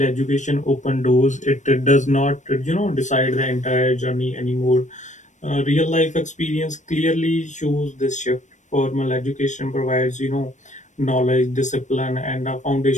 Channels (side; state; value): right; late; 0.35 ms